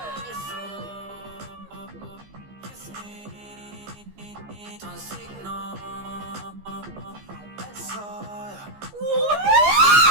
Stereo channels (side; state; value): left; late; 15 ms